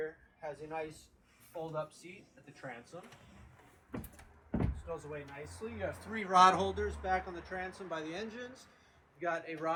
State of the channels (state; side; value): identical; both; correlation 1.00